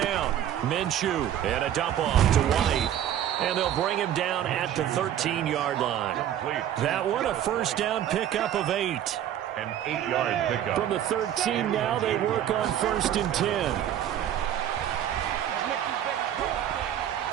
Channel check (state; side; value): quieter; left; 10.8 dB